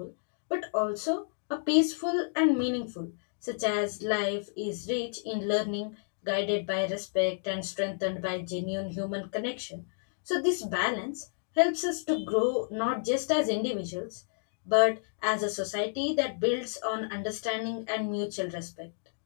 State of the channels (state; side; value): silent; right; digital silence